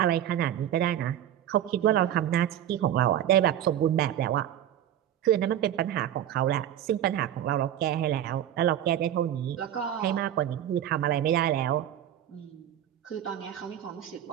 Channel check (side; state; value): left; quieter; 11.1 dB